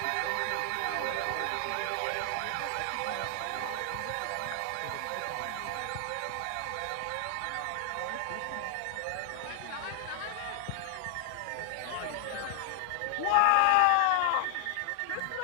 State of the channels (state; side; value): different; both; correlation 0.00